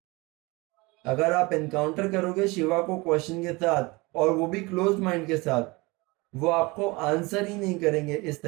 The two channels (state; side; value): quieter; left; 24.4 dB